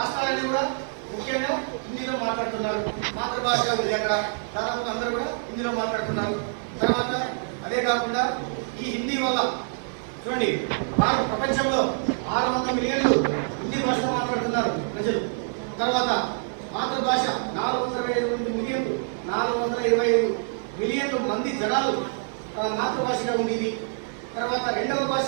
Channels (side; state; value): left; silent; 61 dB below the other